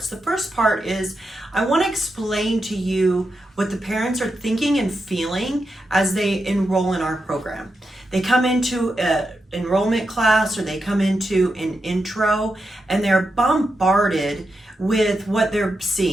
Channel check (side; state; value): both; normal; correlation 0.87